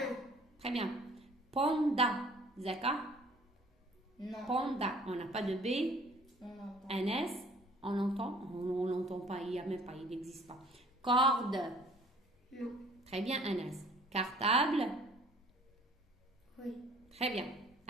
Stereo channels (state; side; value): normal; both; correlation 0.54